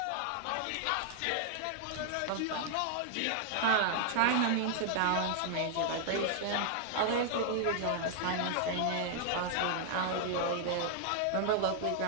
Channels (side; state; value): both; different; correlation -0.01